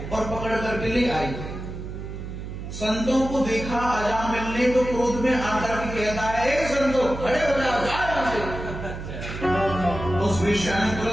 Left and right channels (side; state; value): right; noise; hum, 8 dB below the sound